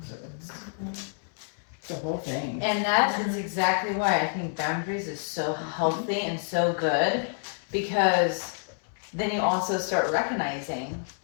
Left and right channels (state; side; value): silent; right; 59 dB below the other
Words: So it's the whole thing. And that is exactly why I think boundaries is so healthy and so good, because then you also start recognizing